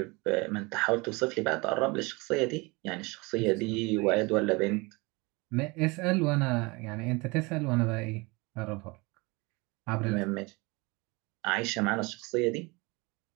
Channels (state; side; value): quieter; left; 26.0 dB